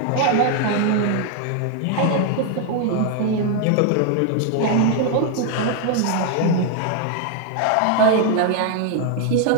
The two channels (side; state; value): both; different; correlation 0.00